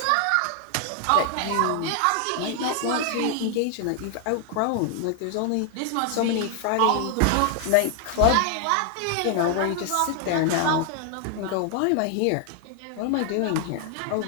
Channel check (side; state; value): both; different; correlation 0.00